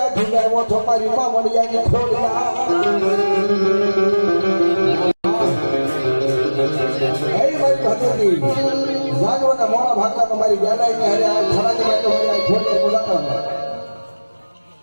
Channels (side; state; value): both; inverted; correlation -1.00